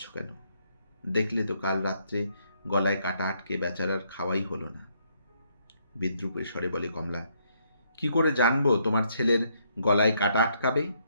কেন? দেখলে তো কাল রাত্রে গলায় কাটা আটকে বেচারার খাওয়াই হলো না। বিদ্রুপের স্বরে বলে কমলা, কি করে জানবো তোমার ছেলের গলায় কাটা আটকাবে?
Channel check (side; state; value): both; inverted; correlation -0.72